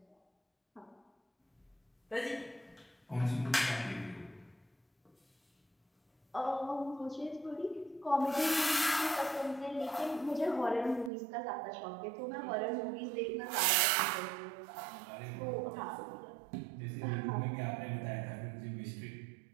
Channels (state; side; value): drops out; left; at 11.1 s